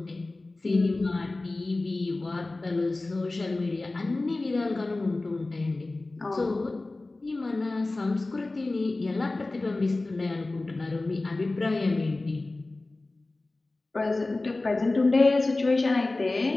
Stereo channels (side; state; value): right; quieter; 3.1 dB